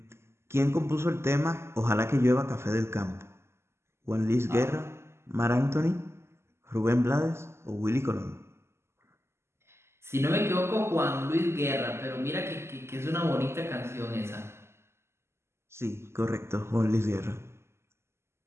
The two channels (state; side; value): late; left; 0.13 ms